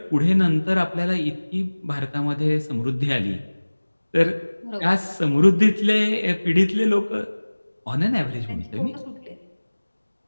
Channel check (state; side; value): inverted; both; correlation -1.00